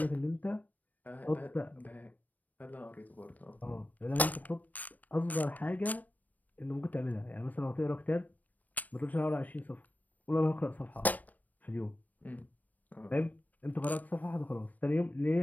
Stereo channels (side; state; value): right; late; 0.080 ms